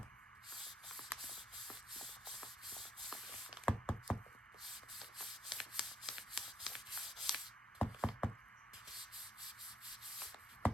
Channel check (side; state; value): both; normal; correlation 0.72